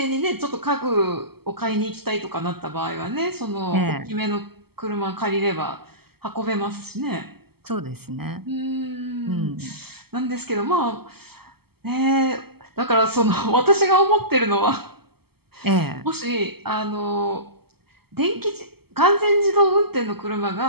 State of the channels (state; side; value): late; left; 0.96 ms